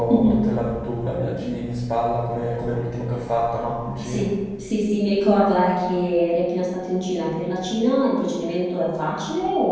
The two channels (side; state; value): both; identical; correlation 1.00